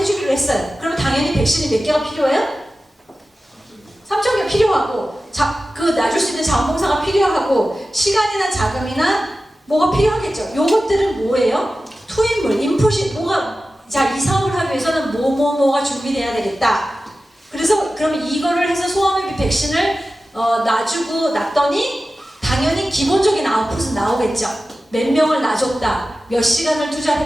했어요. 그러면 당연히 백신이 몇 개가 필요해요? 3,000개 필요하고 그 놔줄 수 있는 자원봉사가 필요하고 시간이나 자금이나 뭐가 필요하겠죠. 요것들은 뭐예요? 투입물, 인풋이 뭐가 자, 이 사업을 하기 위해서는 뭐가 준비돼야 되겠다. 그래서 그러면 이거를 해서 소아마비 백신을 놔더니 당연히 기본적인 아웃풋은 나오겠죠. 몇 명을 놔줬다. 몇 시간을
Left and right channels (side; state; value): both; normal; correlation 0.94